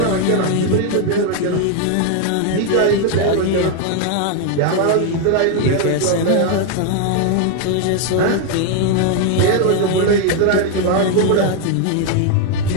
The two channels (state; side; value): different; both; correlation 0.00